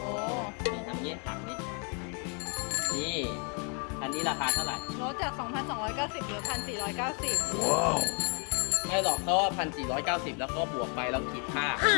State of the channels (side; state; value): right; quieter; 38.3 dB